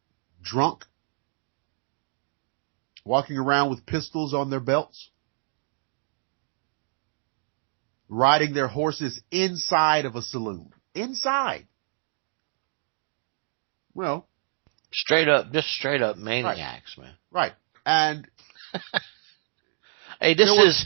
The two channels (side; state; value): left; silent; digital silence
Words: drunk, walking around with pistols on their belts, riding their horses inside of a saloon. Inside. Well, just straight up maniacs, man. Right. And hey, this is